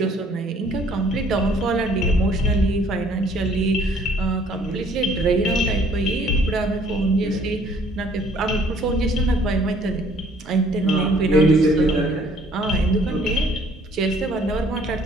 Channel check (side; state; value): both; normal; correlation 0.59